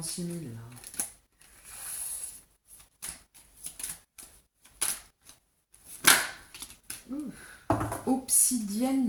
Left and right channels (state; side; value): identical; both; correlation 1.00